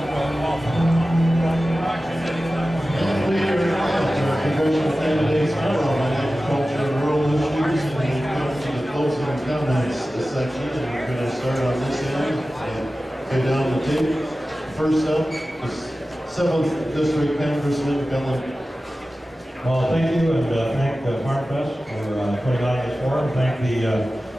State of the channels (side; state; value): both; normal; correlation 0.95